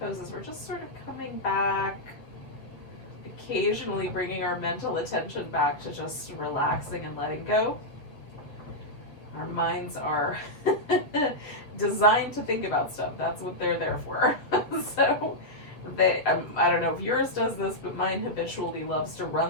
we're just sort of coming back, occasionally bringing our mental attention back to just relaxing and letting go. Our minds are designed to think about stuff. That's what they're there for. So I don't know if yours does this, but mine habitually loves to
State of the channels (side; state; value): right; late; 7.7 ms